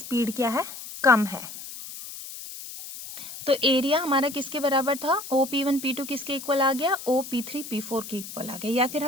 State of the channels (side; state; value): left; noise; hiss, 12 dB below the sound